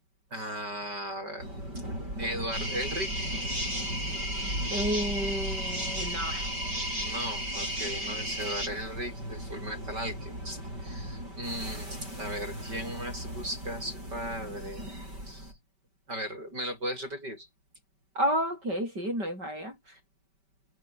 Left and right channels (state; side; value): late; left; 5.2 ms